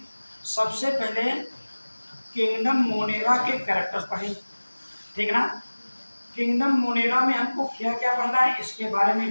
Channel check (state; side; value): inverted; both; correlation -1.00